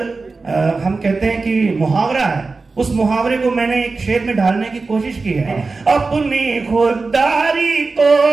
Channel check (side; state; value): left; quieter; 4.0 dB